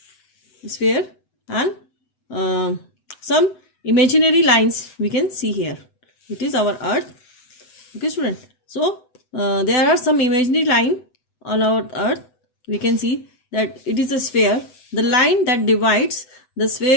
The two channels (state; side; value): late; right; 7.9 ms